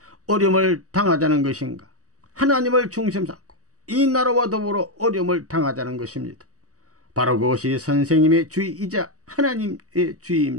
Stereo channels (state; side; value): late; left; 0.66 ms